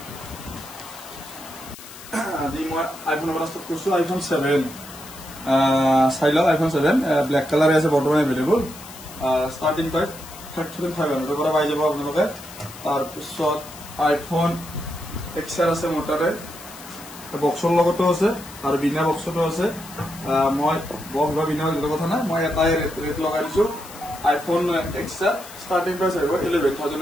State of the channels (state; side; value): noise; left; hiss, 16 dB below the sound